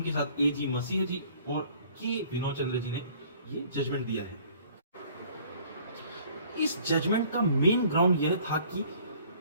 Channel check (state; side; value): inverted; both; correlation -0.54